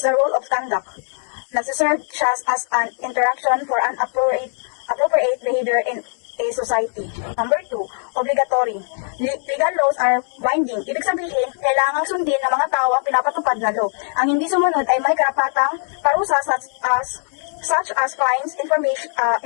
a rule of conduct. Nagsiserve siya as an interaction for an appropriate behavior in a society. Number 2, obligatory. Legal laws are binding. Ibig sabihin, kailangang sundin ng mga tao ang pinapatupad na law. Ang hindi sumunod ay may karapatang parusa such as fines,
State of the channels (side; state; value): right; silent; 65 dB below the other